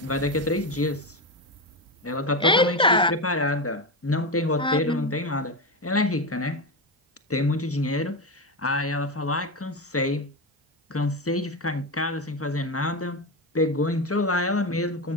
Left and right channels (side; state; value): both; normal; correlation 0.15